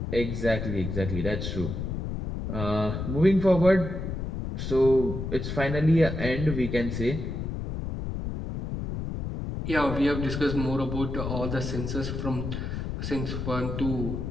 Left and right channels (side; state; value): left; noise; rumble, 4 dB below the sound